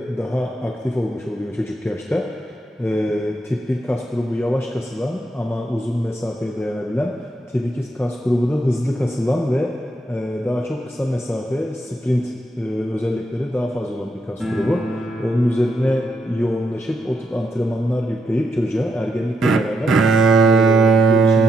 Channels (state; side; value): normal; both; correlation 0.81